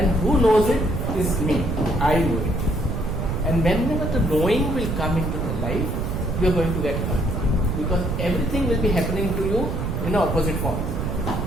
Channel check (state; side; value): noise; right; rumble, 1 dB below the sound